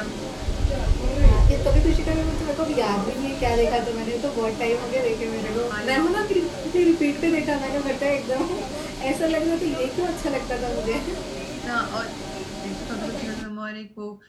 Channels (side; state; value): both; identical; correlation 1.00